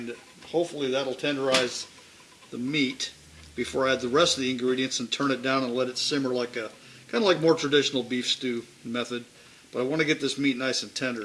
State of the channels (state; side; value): identical; both; correlation 1.00